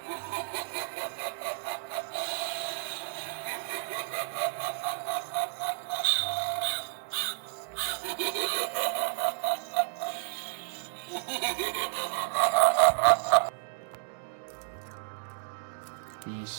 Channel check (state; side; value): silent; left; digital silence